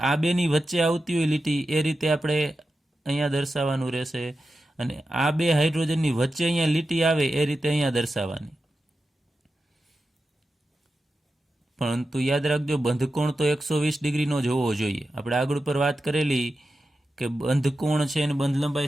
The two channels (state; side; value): normal; both; correlation 0.91